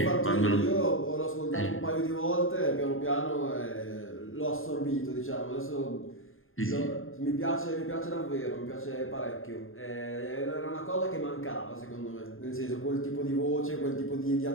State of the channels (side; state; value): right; late; 0.60 ms